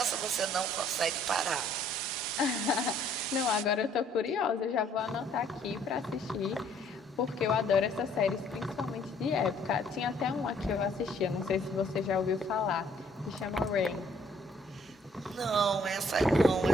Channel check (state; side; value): normal; both; correlation 0.62